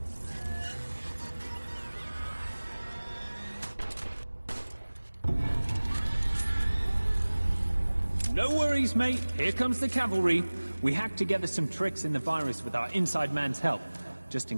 No worries, mate. Here comes the cavalry. We hacked together some tricks in the virus with our inside man's help, just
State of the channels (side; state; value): both; inverted; correlation -1.00